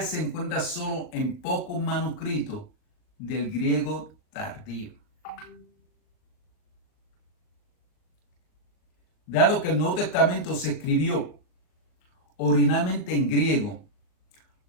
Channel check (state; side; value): late; right; 39 ms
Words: se encuentra solo en pocos manuscritos del griego tardío. Dado que el Nuevo Testamento se escribió originalmente en griego,